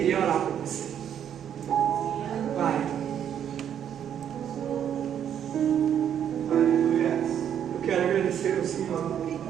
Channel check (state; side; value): quieter; left; 9.3 dB